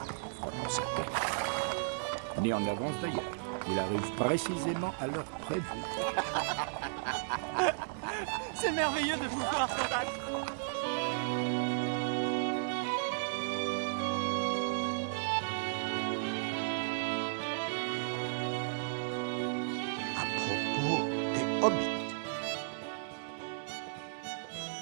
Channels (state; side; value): silent; left; digital silence